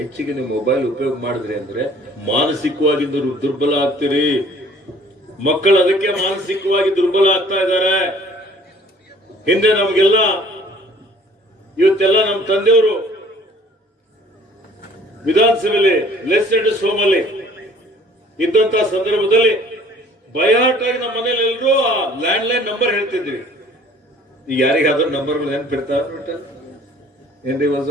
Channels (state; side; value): normal; both; correlation 0.54